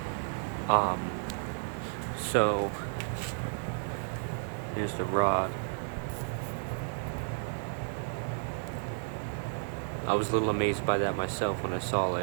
Um, so here's the rod. I was a little amazed by that myself when I saw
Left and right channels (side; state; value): left; silent; 56 dB below the other